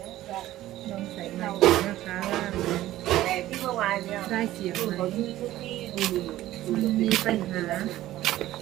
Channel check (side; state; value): left; quieter; 14.8 dB